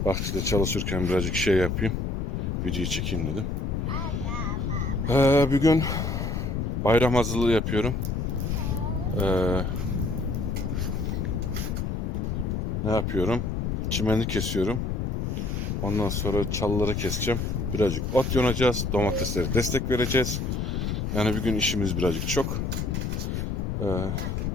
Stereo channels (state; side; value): noise; left; rumble, 1 dB below the sound